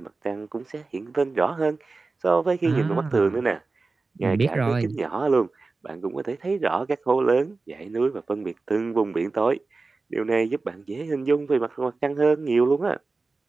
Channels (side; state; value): left; quieter; 3.8 dB